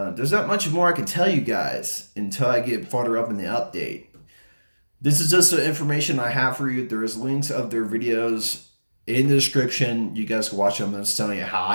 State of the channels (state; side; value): inverted; both; correlation -1.00